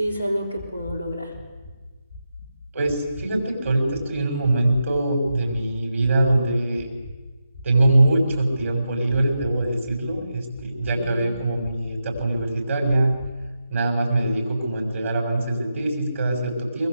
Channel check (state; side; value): inverted; both; correlation -0.87